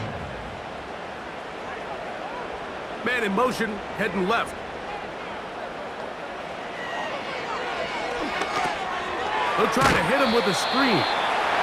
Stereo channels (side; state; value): both; identical; correlation 1.00